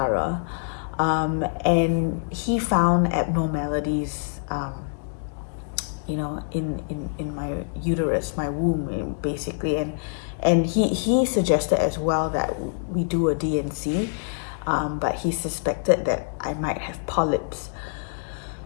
And he found abnormalities, you know, in my uterus, my womb, basically. And he suggested as well that we do a D&C, but he suspected that I might have polyps.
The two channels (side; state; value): right; silent; digital silence